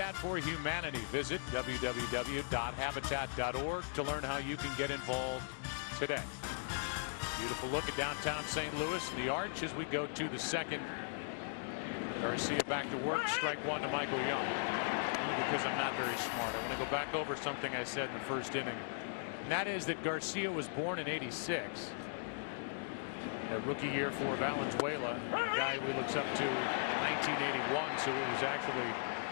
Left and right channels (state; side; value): silent; right; digital silence